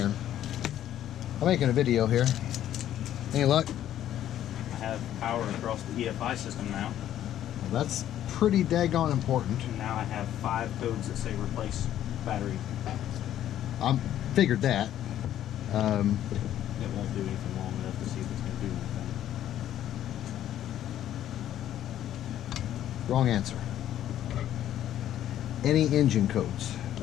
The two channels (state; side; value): quieter; right; 11.7 dB